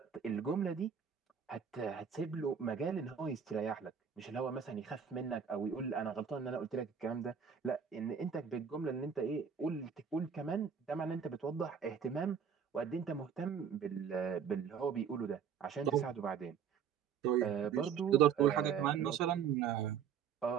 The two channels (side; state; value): left; quieter; 7.3 dB